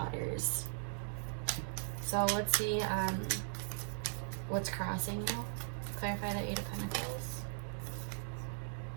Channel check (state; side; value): silent; left; digital silence